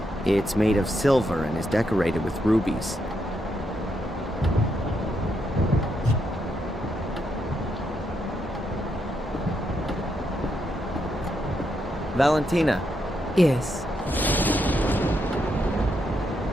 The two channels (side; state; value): both; normal; correlation 0.80